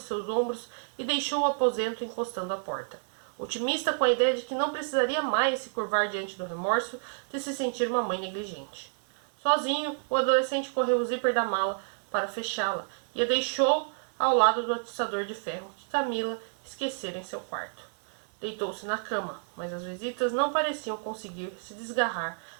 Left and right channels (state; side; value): silent; left; digital silence